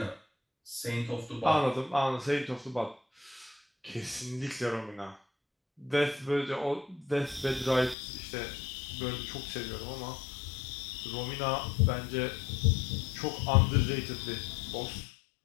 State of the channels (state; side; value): drops out; right; at 8.0 s